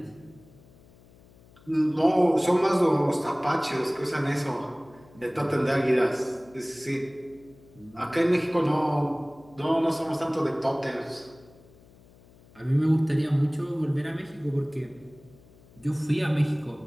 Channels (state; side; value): noise; left; hum, 26 dB below the sound